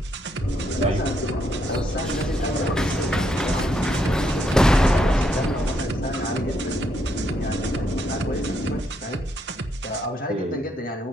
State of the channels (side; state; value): both; normal; correlation 0.76